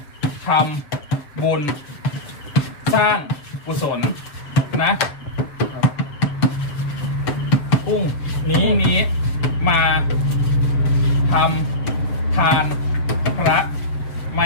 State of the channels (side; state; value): right; late; 7.1 ms